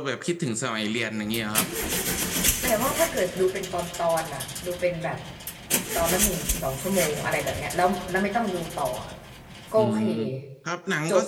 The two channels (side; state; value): both; identical; correlation 1.00